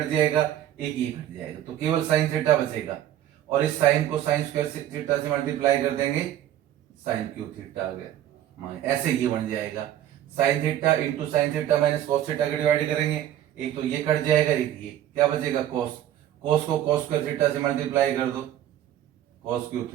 जाएगा, एक ही कट जाएगा, तो केवल साइन थीटा बचेगा, और इस साइन को साइन स्क्वायर थीटा से मल्टीप्लाई कर देंगे, साइन क्यूब थीटा आ गया, ऐसे ये बन जाएगा sign theta into sine theta minus cos theta का डिवाइड करेंगे, एक तो ये कट जाएगा, एक ये क्या बचेगा कॉस, कॉस को कॉस स्क्वायर थीटा से मल्टीप्लाई कर दो, कॉस क्यूब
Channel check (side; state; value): left; quieter; 11.9 dB